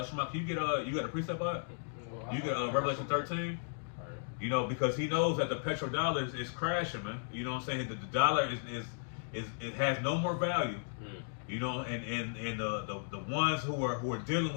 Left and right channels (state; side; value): silent; right; digital silence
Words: Shema, can you got a precept on it? You get Revelation 13. Because he knows that the petrodollar is crashing, man. You know what I'm saying? The dollar is it has no more value. And the ones who are dealing